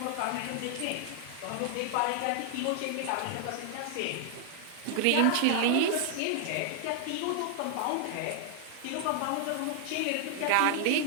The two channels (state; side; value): different; both; correlation 0.00